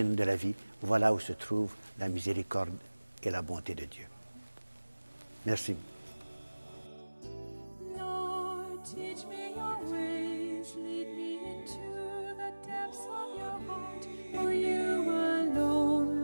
de la vie, voilà où se trouve la miséricorde et la bonté de Dieu. Merci.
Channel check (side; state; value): both; inverted; correlation -1.00